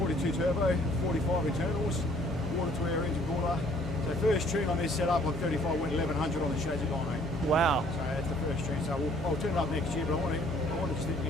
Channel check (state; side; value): normal; both; correlation 0.59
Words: turbo, 45 internals, water to air engine cooler. So first tune on this setup on 35 went 1100 on the chassis dyno. Wow. So that's the first tune. So I'll turn it up next year, but I want to just